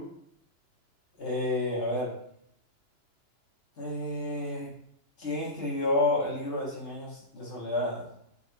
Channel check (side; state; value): right; late; 2.9 ms